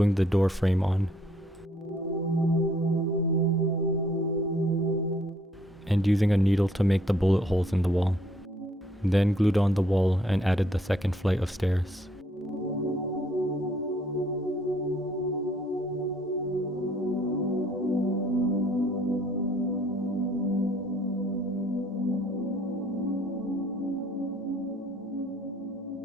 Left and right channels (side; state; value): both; normal; correlation 0.64